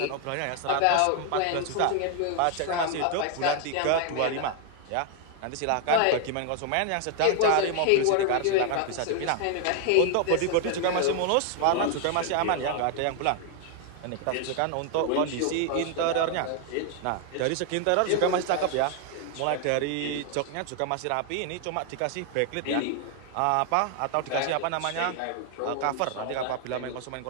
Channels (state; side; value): different; both; correlation 0.00